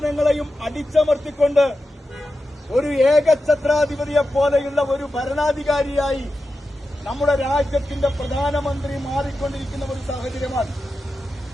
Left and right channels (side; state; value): both; normal; correlation 0.91